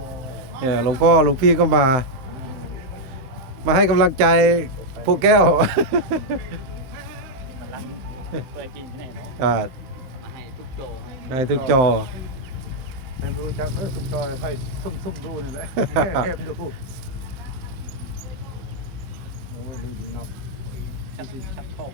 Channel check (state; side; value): late; left; 15 ms